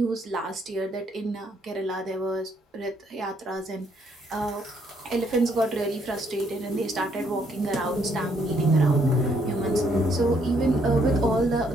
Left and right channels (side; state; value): both; normal; correlation 0.70